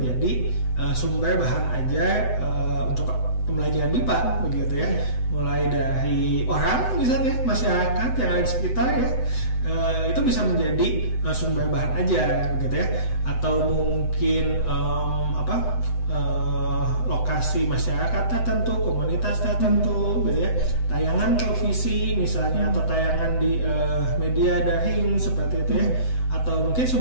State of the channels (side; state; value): right; late; 7.9 ms